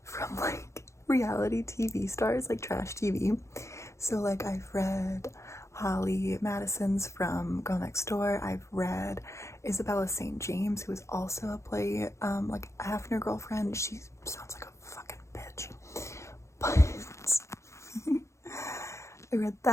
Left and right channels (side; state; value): right; late; 0.14 ms